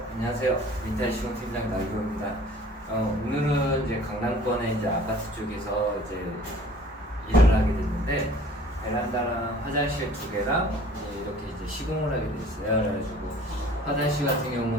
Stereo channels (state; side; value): normal; both; correlation 0.50